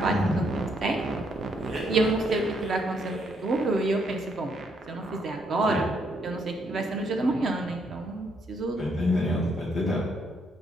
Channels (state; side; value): normal; both; correlation 0.73